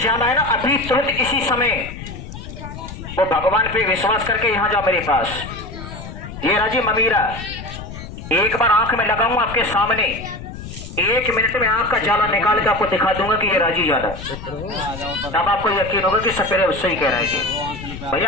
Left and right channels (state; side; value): noise; left; rumble, 11 dB below the sound